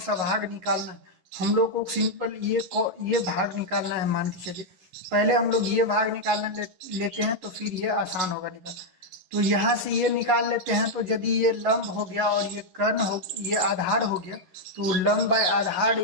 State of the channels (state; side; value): late; left; 11 ms